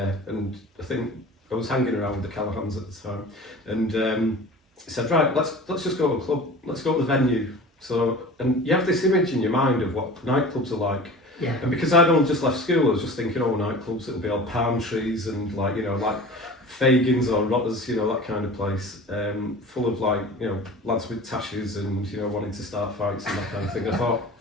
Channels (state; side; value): normal; both; correlation 0.39